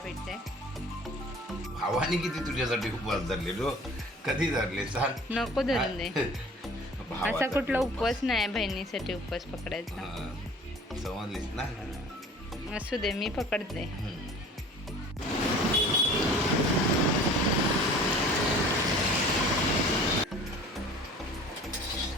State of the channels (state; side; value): normal; both; correlation 0.47